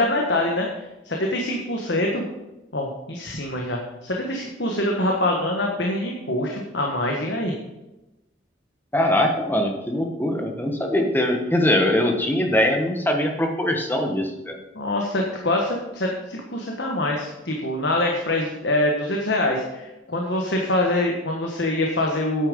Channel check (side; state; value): both; normal; correlation 0.30